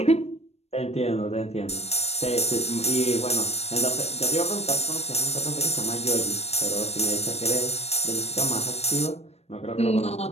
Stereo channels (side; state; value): right; late; 0.31 ms